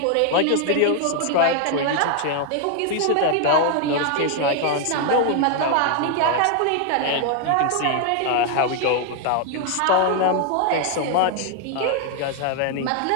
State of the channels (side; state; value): both; different; correlation 0.00